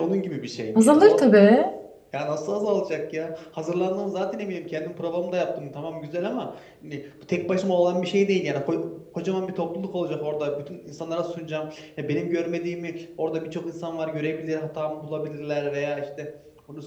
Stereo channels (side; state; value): both; identical; correlation 1.00